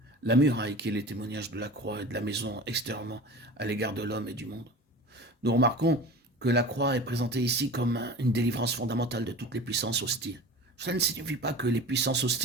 la muraille qui est le témoignage de la croix et de la maison extérieurement à l'égard de l'homme et du monde. Nous remarquons que la croix est présentée ici comme une délivrance fondamentale de toutes les puissances hostiles. Cela ne signifie pas que les puissances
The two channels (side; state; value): both; normal; correlation 0.36